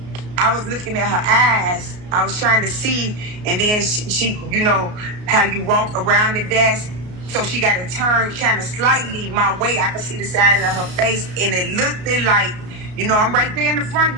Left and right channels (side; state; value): left; late; 33 ms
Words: I was looking at her eyes. I was trying to see, and then she how you walk around the desk. So she got to turn kind of slightly my way. I could see the side of her face, and it looked like, I'm right there in the front,